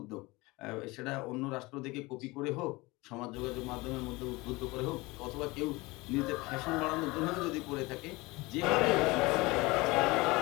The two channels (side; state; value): right; quieter; 22.8 dB